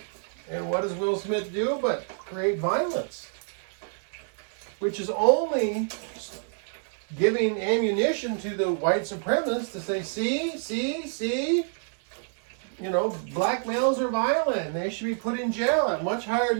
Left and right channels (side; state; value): left; silent; digital silence